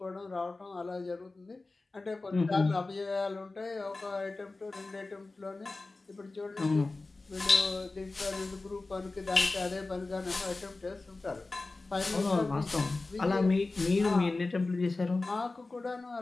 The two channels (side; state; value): right; quieter; 3.4 dB